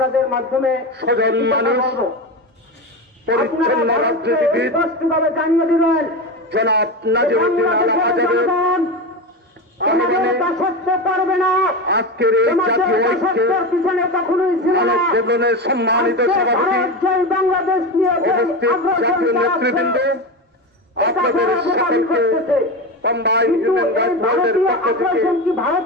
মাধ্যমে সজন মানুষ পরিচ্ছন্ন রাজনীতিবিদ স্পষ্টভাবে জানিয়ে দিলেন জনাব নাজিরউদ্দিন আল আজাদের পারবে না। আজকের এই জাতীয় ঐক্যের পিছনে কখনোই ছিল না। জীবনের সম্মানিত সভাপতি বাংলাদেশ নিয়ে উপস্থিত জাতীয় নেতৃবৃন্দ আপনাদের সকলকে কম্বাইন হিউম্যান রাইটস ওয়াচের পক্ষ থেকে ভারত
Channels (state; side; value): normal; both; correlation 0.21